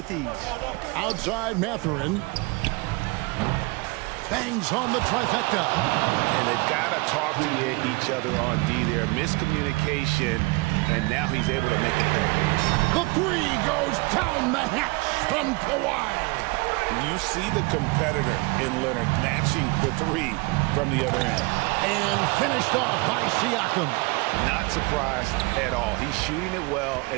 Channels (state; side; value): quieter; left; 26.3 dB